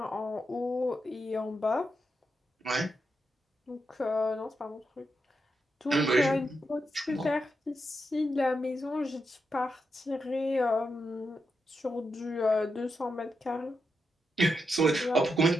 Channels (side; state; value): both; normal; correlation 0.85